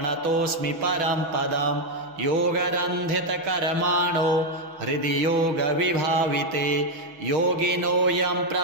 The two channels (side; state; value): left; late; 6.1 ms